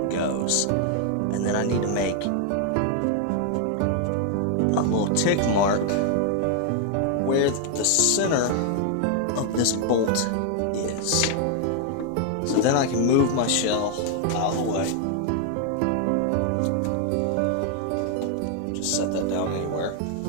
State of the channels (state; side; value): different; both; correlation 0.00